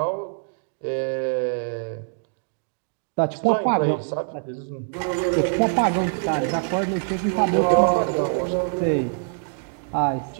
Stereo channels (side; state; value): left; silent; digital silence